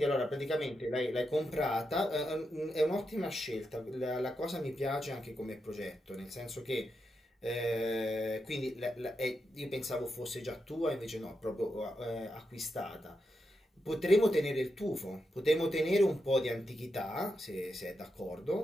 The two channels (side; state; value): both; normal; correlation 0.86